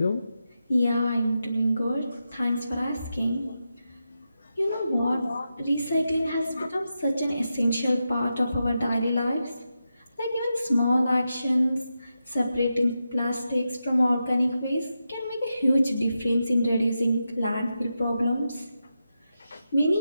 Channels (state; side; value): inverted; both; correlation -0.88